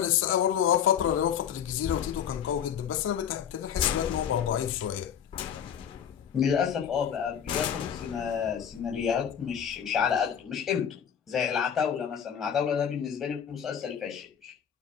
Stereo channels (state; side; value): quieter; right; 8.5 dB